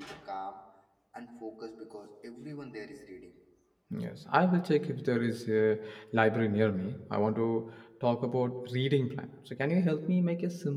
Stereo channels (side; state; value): both; identical; correlation 1.00